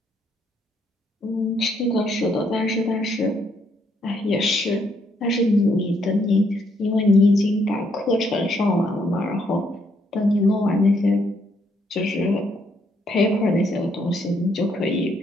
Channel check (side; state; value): both; normal; correlation 0.72